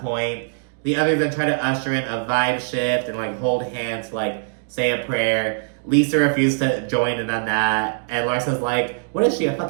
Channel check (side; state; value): left; silent; digital silence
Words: point. The others then try to usher in a vibe shift and like hold hands to like say a prayer. Lisa refused to join in on that. And Larsa's like, what is she, a